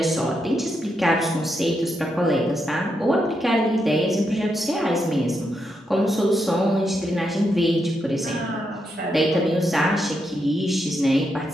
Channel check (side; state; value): both; normal; correlation 0.82